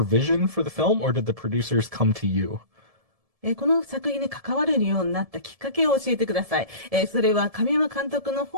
vision for the film, or did the producers come to you? この作品に関われるようになったきっかけを教えてください。それは神山監督の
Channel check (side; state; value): left; late; 1.7 ms